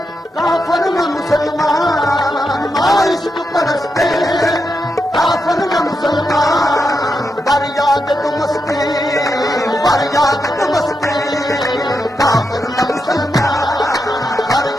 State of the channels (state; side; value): normal; both; correlation 0.85